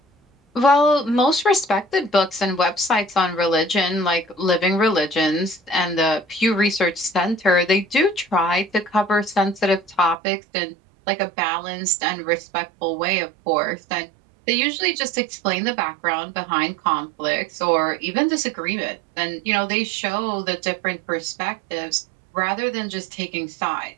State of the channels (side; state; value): left; drops out; at 10.2 s